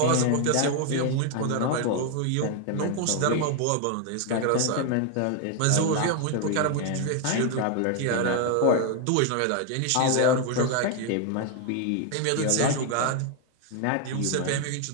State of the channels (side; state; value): both; different; correlation 0.01